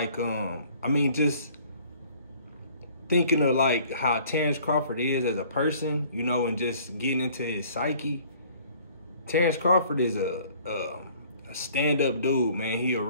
I mean, just thinking of like how Terence Crawford is as a person, you know, and just getting into his psyche. Terence Crawford is a stand-up dude, man. He a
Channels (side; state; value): both; inverted; correlation -0.55